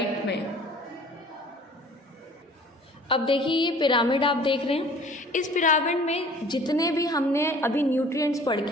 में, अब देखिए ये पिरामिड आप देख रहे हैं, इस पिरामिड में जितने भी हमने अभी न्यूट्रिएंट्स पढ़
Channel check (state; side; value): normal; both; correlation 0.49